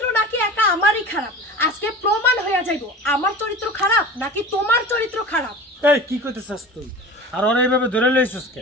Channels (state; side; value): normal; both; correlation 0.35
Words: নাকি একা আমারই খারাপ। আজকে প্রমাণ হয়ে যাইব আমার চরিত্র খারাপ নাকি তোমার চরিত্র খারাপ। এই কি কইতেছস তুই? আর ওরা এইভাবে ধরে লইছস কে?